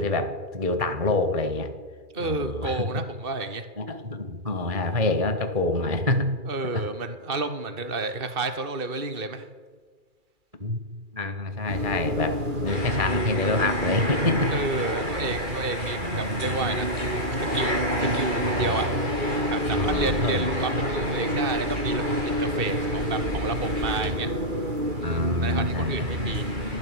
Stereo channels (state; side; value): late; left; 2.4 ms